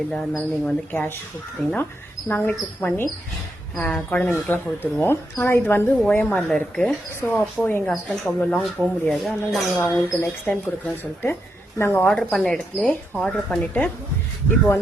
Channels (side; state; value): both; normal; correlation 0.82